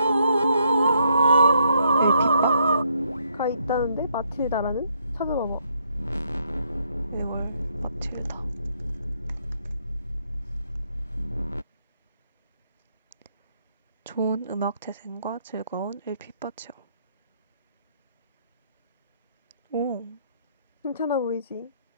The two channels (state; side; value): inverted; both; correlation -0.72